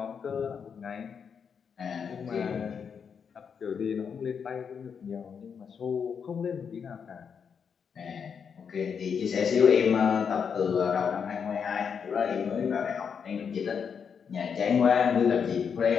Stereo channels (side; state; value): right; quieter; 6.7 dB